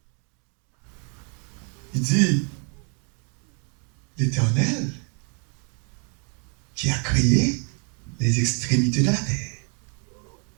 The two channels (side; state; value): left; quieter; 39.5 dB